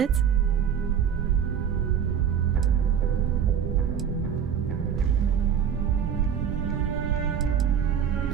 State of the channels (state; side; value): quieter; left; 8.2 dB